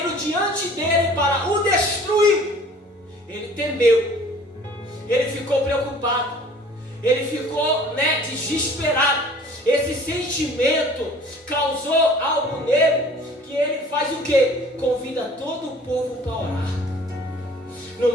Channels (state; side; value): normal; both; correlation 0.50